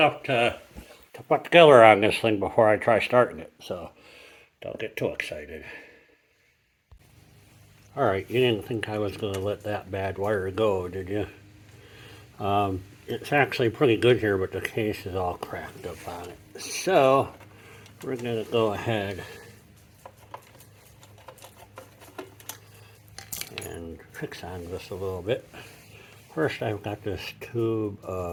to put together on this thing before I try starting it, so don't get too excited. All right, you didn't think I was going to let that bad wire go, did you? It's actually pretty good here, but the case is all cracked up on it. So we're going to go ahead and fix on this a little bit. First, I've got this tube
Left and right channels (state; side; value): identical; both; correlation 1.00